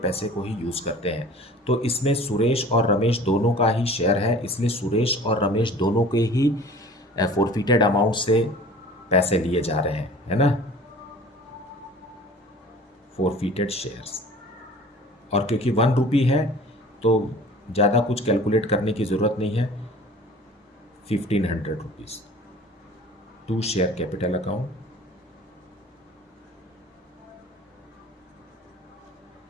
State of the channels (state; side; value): normal; both; correlation 0.45